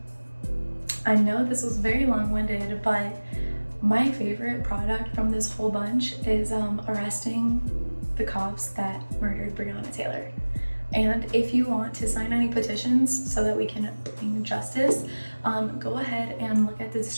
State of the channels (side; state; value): both; inverted; correlation -1.00